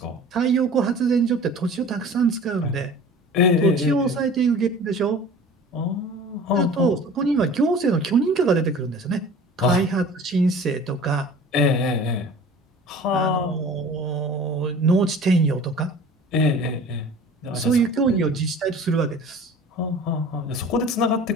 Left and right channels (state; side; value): normal; both; correlation 0.43